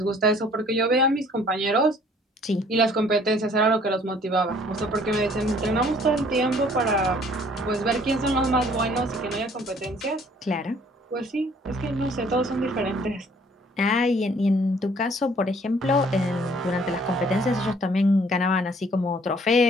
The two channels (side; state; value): both; normal; correlation 0.58